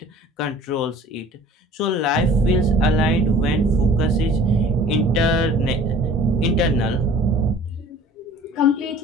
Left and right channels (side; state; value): both; normal; correlation 0.48